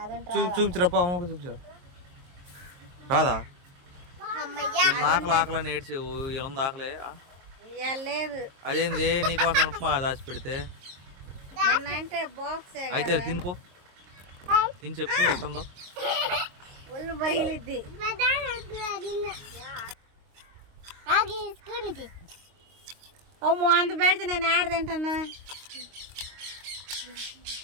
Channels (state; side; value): late; left; 22 ms